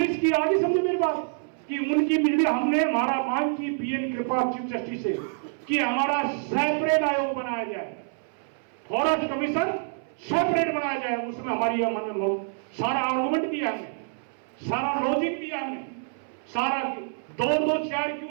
की आगे समझे मेरी बात कि उनकी बिजली हमने हमारा मांग की पीएन कृपा चीफ जस्टिस से कि हमारा सेपरेट आयोग बनाया जाए, फॉरेस्ट कमीशन सेपरेट बनाया जाए। उसमें हमारी सारा आर्गुमेंट दिया हमने, सारा लॉजिक दिया हमने, सारा 2-2 चेयर क्यों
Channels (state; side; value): silent; left; 60 dB below the other